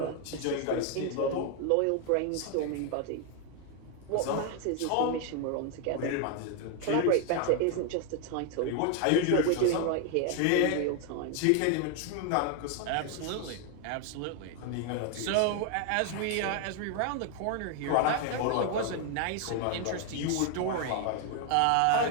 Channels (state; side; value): different; both; correlation 0.01